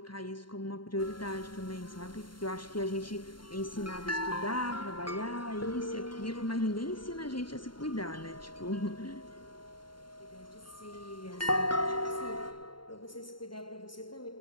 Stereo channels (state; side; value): late; right; 0.72 ms